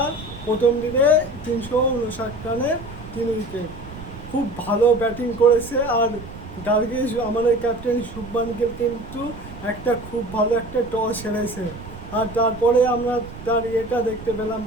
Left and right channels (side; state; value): right; noise; rumble, 14 dB below the sound